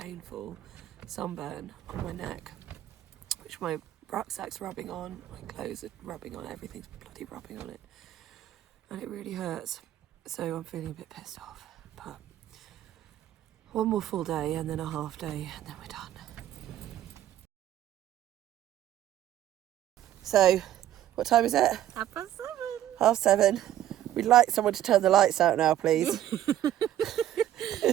sunburn on my neck, which my rucksack's rubbing on, my clothes are rubbing on, everything's bloody rubbing on it, and it really hurts. So I'm feeling a bit pissed off, but one more full day and then a half day and then we're done. So, what time is it? 7:30. 7:30. We'd like someone to turn the lights out now, please.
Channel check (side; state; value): left; quieter; 12.4 dB